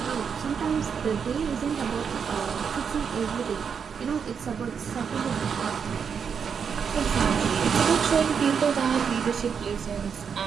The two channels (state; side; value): quieter; left; 6.7 dB